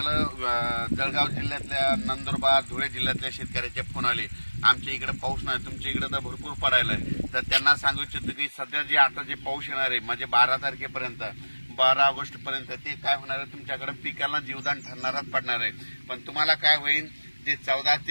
जळगाव जिल्ह्यातल्या, नंदुरबार, धुळे जिल्ह्यातल्या शेतकऱ्याचे फोन आले, आमच्या इकडे पाऊस नाही, तुमच्या इकडे तर भरपूर पडायलाय. तर त्यांना सांगू इच्छितो की सध्या जे आता जे पाऊस येणार आहे, म्हणजे 12 तारखेपर्यंत, 12 ऑगस्ट पर्यंत, ते काय होणार आहे, तुमच्याकडे पिकाला जीवदान ठरणारच पडणार आहे. पण तुम्हाला काय होईल, जे 14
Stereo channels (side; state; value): both; inverted; correlation -1.00